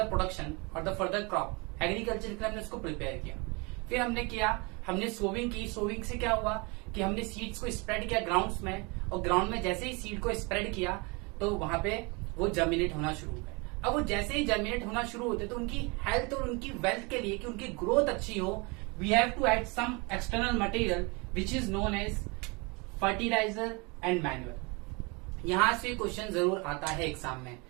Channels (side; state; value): left; quieter; 28.7 dB